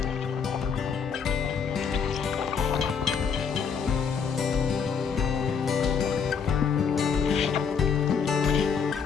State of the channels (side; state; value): right; quieter; 6.4 dB